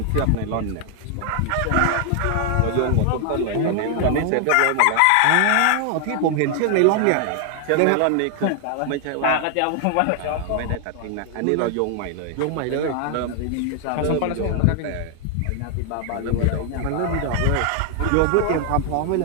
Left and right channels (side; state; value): both; different; correlation 0.00